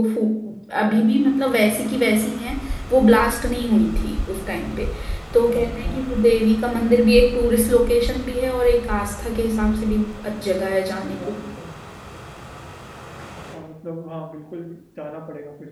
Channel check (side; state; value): both; identical; correlation 1.00